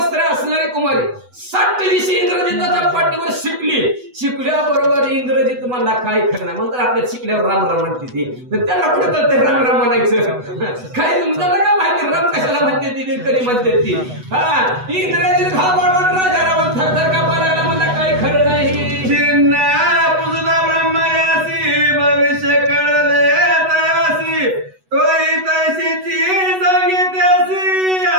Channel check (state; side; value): late; left; 8.0 ms